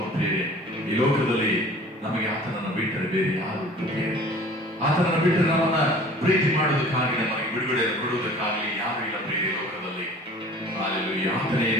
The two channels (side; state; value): both; normal; correlation 0.46